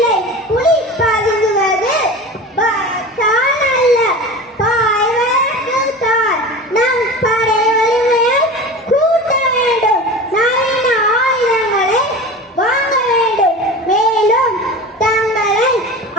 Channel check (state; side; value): normal; both; correlation 0.32